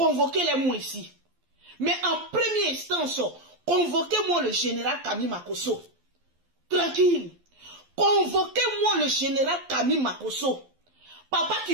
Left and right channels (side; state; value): left; late; 12 ms